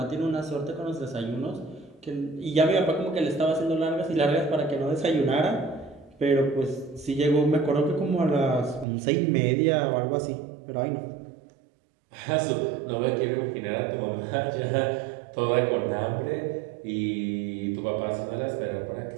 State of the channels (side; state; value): left; drops out; at 8.8 s